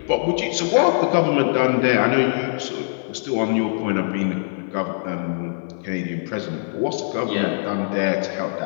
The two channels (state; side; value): silent; right; 59 dB below the other